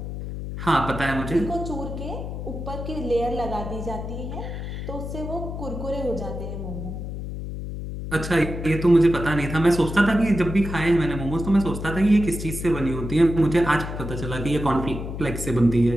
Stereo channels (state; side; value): noise; left; hum, 7 dB below the sound